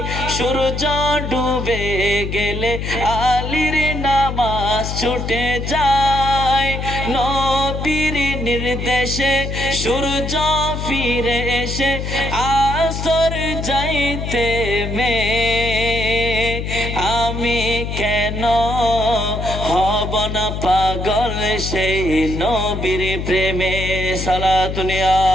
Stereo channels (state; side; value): noise; left; hum, 4 dB below the sound